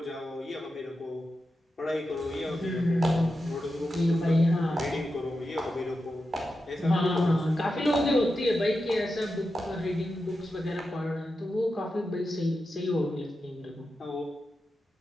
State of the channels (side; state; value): both; normal; correlation 0.90